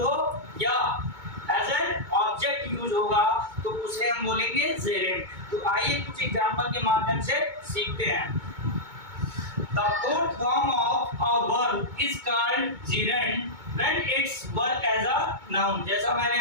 हो या एज एन ऑब्जेक्ट यूज होगा तो उसे हम बोलेंगे जेरेंट। तो आइए कुछ एग्जांपल के माध्यम से सीखते हैं। The fourth form of a verb is called gerund when its work as a noun। जैसा मैंने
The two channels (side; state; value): left; late; 2.2 ms